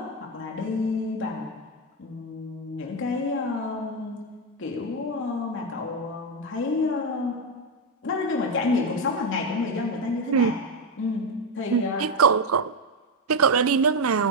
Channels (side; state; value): both; normal; correlation 0.07